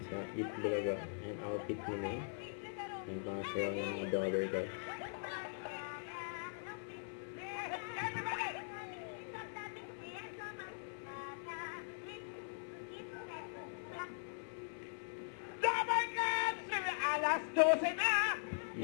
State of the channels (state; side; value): silent; right; 50 dB below the other